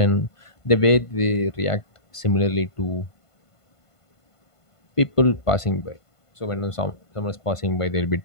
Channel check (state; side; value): late; right; 1.5 ms